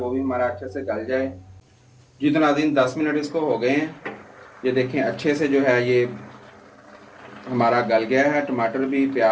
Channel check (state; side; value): identical; both; correlation 1.00